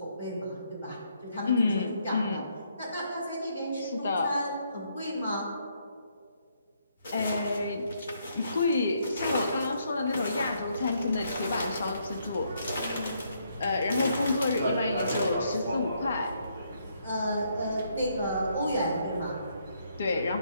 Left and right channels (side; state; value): both; inverted; correlation -0.73